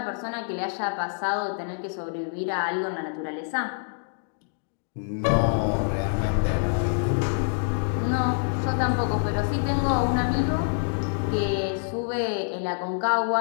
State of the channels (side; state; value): right; silent; digital silence